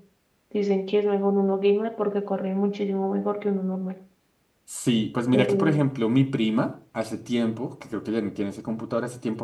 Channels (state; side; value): identical; both; correlation 1.00